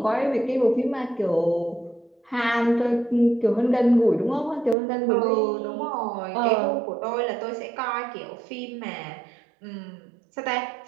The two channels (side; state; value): left; drops out; at 4.8 s